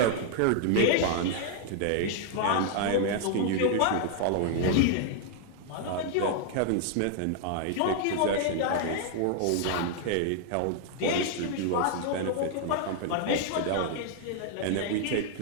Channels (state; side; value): different; both; correlation 0.00